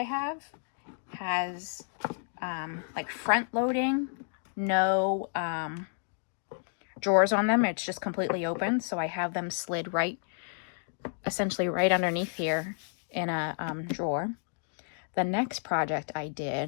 have has like front loading, no drawers on them. It's just completely open, so I have them slid right, essentially right underneath here in a drawer. The next project I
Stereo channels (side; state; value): right; silent; digital silence